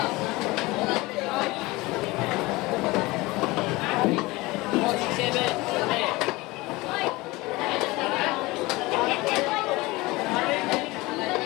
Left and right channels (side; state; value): right; quieter; 21.6 dB